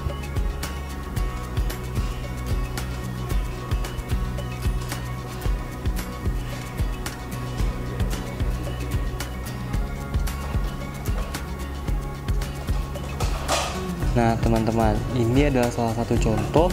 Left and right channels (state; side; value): identical; both; correlation 1.00